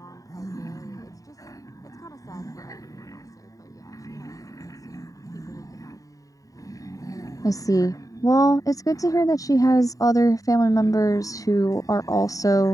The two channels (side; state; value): right; late; 0.16 ms